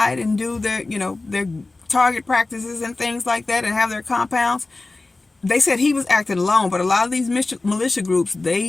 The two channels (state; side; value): quieter; right; 3.3 dB